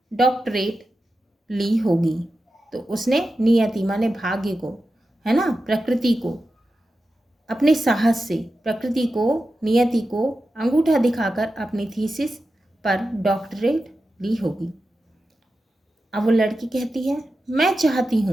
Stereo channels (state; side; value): normal; both; correlation 0.91